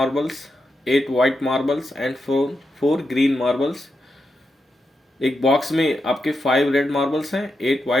8 white marbles and 4 green marbles. एक बॉक्स में आपके 5 रेड मार्बल्स हैं, 8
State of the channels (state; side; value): normal; both; correlation 0.86